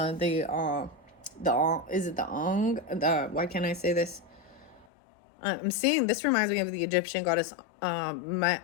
it the Ong? Why can't I say this? I'm seeing, this reminds me of the Egyptian goddess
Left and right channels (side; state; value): right; drops out; at 4.9 s